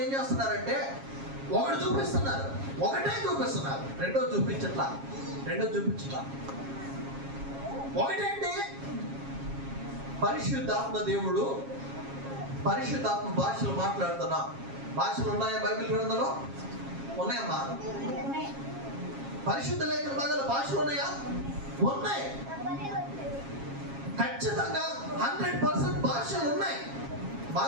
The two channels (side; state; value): left; late; 7.3 ms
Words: ఏం చేస్తున్నారంటే ఒకటే చూపిస్తున్నారు, రెండో చూపించట్లా. ఒకటేంటి? పరిశుద్ధాత్మ దేవుడు, పరిశుద్ధాత్మ భాషలు మాట్లాడుతున్నా. భాషలు ఉన్నాయా బైబిల్ గ్రంథంలో? ఉన్నాయమ్మా. పరిశుద్ధ లేఖన భాగాల భాషలు ఉన్నాయా? ఉన్నాయి. ఖచ్చితంగా 100% భాషలు ఉన్నాయి,